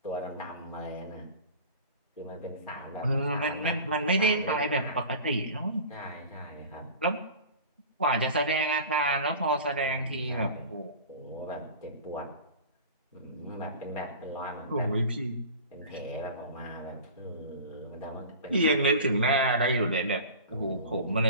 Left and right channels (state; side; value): inverted; both; correlation -0.37